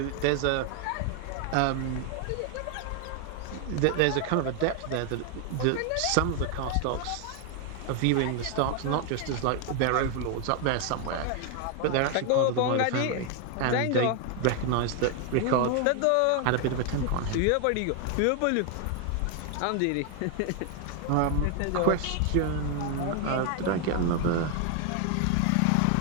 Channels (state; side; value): different; both; correlation 0.00